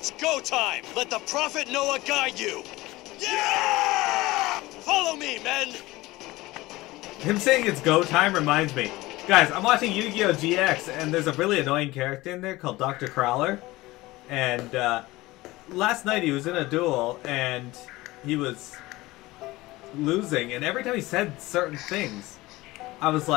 go time! Let the Prophet Noah guide you! Yeah! Follow me, men! Him saying it's go time reminds me. Guys, I'm watching Yu-Gi-Oh! GX, and there's a really annoying character in there called Dr. Crowler. And last night he was in a duel, and he was losing, and every time he said certain things, I was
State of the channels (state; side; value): quieter; right; 19.5 dB